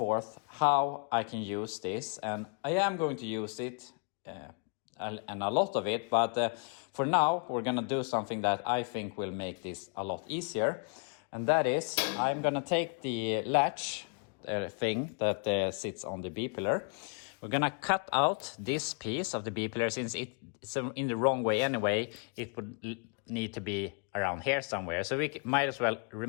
how I can use this, and I am going to use it and a lot of it, but for now we're gonna do something that I think will make this a lot easier. And that is, I'm gonna take the latch thing that sits on the B pillar. We're gonna cut out this piece of the B pillar. Since it's in the wrong way anyway, it would need to be around here somewhere. So we might as well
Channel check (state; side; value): quieter; right; 38.3 dB